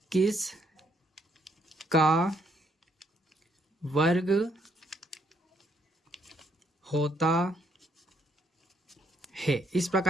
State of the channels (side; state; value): both; normal; correlation 0.72